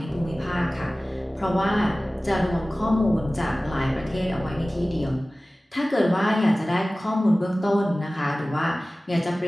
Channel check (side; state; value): both; normal; correlation 0.97